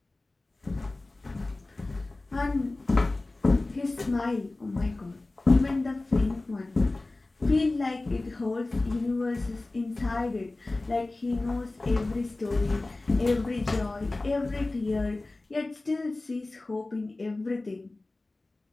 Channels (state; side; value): quieter; right; 3.0 dB